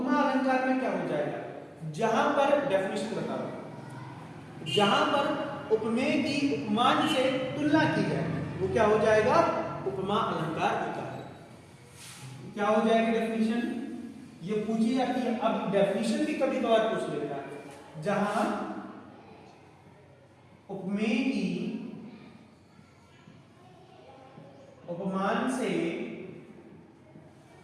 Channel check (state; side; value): identical; both; correlation 1.00